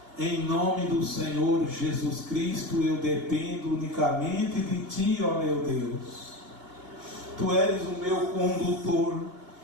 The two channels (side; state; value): left; late; 2.8 ms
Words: Em nome do Senhor Jesus Cristo, eu dependo unicamente de Ti, ó meu Deus. Tu és o meu condutor,